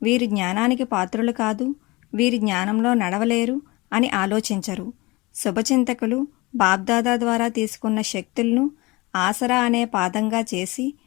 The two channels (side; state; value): right; quieter; 23.4 dB